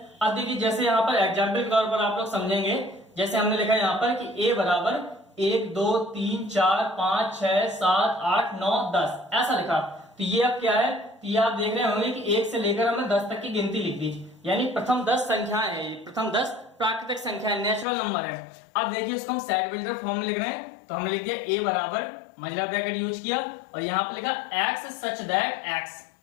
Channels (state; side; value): drops out; right; at 17.9 s